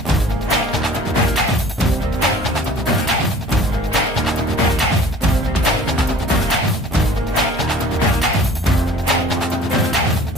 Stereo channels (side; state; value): both; normal; correlation 0.48